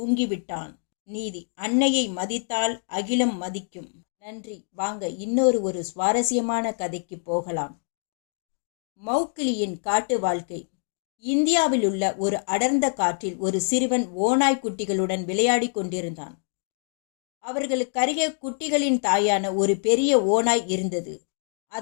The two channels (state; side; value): silent; right; digital silence